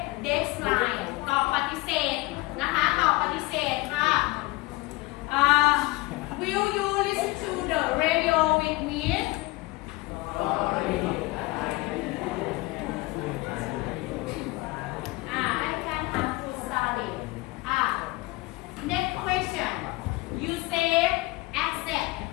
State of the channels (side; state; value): right; quieter; 21.7 dB